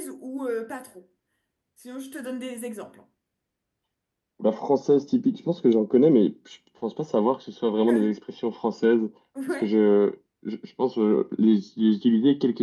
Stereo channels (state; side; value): identical; both; correlation 1.00